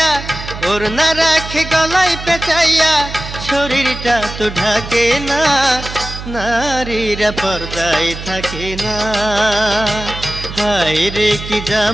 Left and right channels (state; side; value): noise; right; hum, 10 dB below the sound